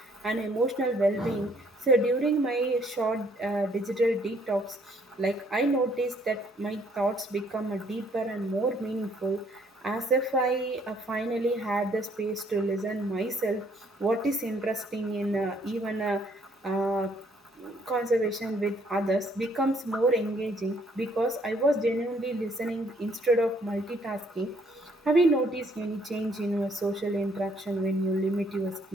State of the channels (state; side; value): normal; both; correlation 0.65